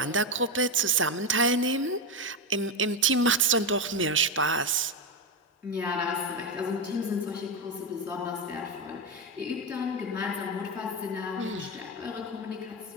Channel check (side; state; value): both; normal; correlation 0.11